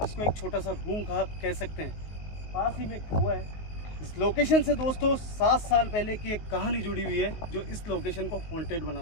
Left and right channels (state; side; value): late; right; 19 ms